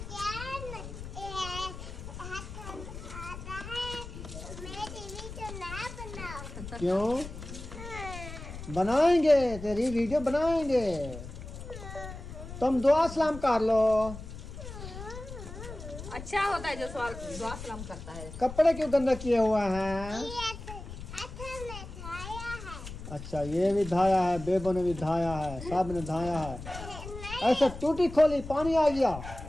क्यों बनाएंगे? तेरी वीडियो बनाएंगे। तुम दुआ सलाम कर लो। अच्छा होता है जो सवाल दुआ सलाम करता है। कपड़े क्यों गंदा किए हुए हैं? अच्छा, ये भी धाया है, बेबो ने भी धाया है, सब ने धाया है। ऐसे टूटी खोली पानी आ गया।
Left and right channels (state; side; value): noise; left; rumble, 11 dB below the sound